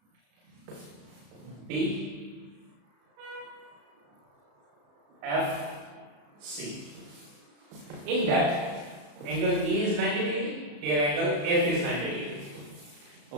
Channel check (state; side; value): late; left; 34 ms